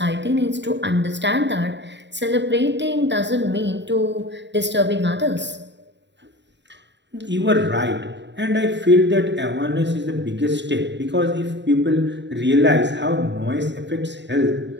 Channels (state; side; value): late; left; 0.52 ms